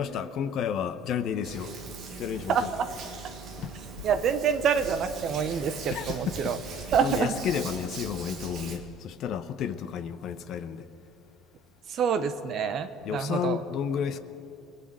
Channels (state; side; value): normal; both; correlation 0.51